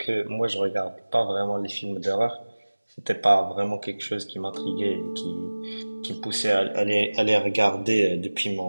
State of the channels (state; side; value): inverted; both; correlation -1.00